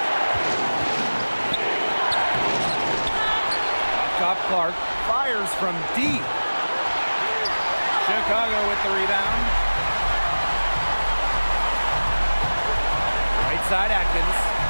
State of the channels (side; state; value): both; inverted; correlation -1.00